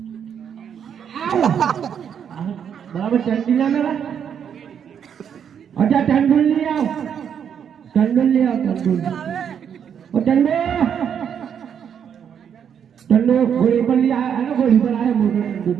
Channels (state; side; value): quieter; left; 8.1 dB